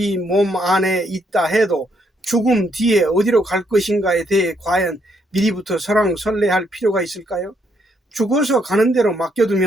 몸 안에 있다 해도 죽음 뒤에 어디로 갈 것인가에 대해 과연 미리부터 설왕설래할 필요가 있을까요? 죽어서 가는 대로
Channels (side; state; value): both; normal; correlation 0.73